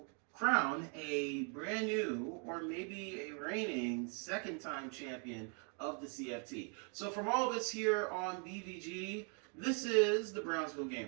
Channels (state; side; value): quieter; left; 39.9 dB